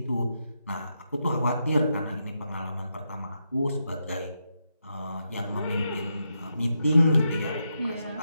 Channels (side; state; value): both; inverted; correlation -0.84